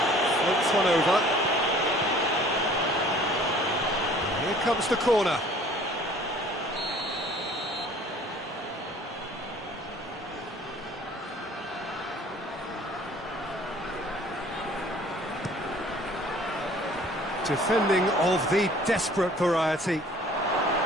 floats one over. Here comes the corner. Defending of the desperate variety.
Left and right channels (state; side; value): normal; both; correlation 0.52